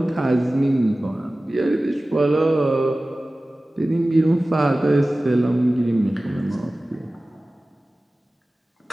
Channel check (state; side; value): normal; both; correlation 0.97